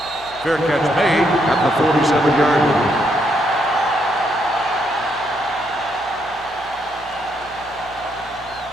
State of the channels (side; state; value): left; noise; hum, 25 dB below the sound